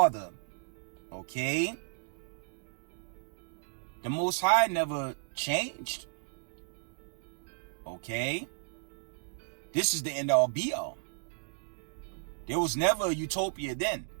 Okay. The Most High never changed. Okay. This is the end all be all. There was never a utopia then.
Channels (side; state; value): left; silent; digital silence